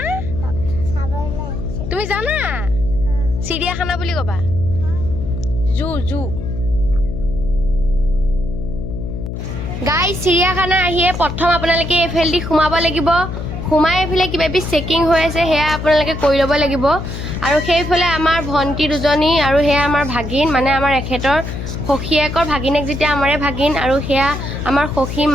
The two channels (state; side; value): noise; left; hum, 6 dB below the sound